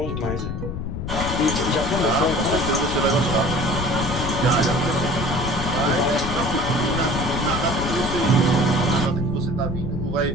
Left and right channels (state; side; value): noise; left; rumble, 4 dB below the sound